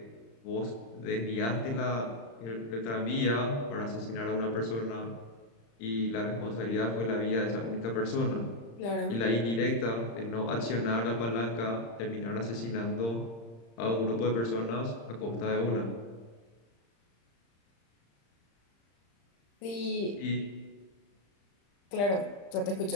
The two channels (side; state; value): right; late; 35 ms